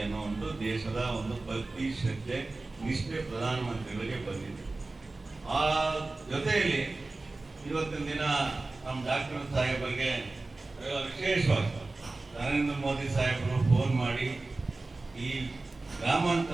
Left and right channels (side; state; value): left; quieter; 3.3 dB